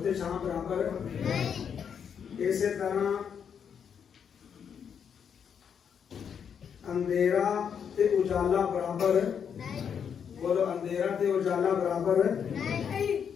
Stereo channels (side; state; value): right; quieter; 7.5 dB